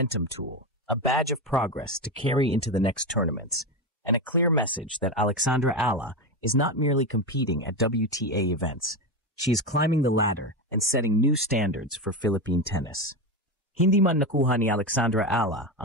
tool, a badge of progress to carry into the next tournaments, and a clear message that Alexandra Ella is not merely competing at WTA events. She is climbing the ladder and setting new standards for Philippine tennis. Hindi man nakuha ni Alexandra Ella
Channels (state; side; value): normal; both; correlation 0.16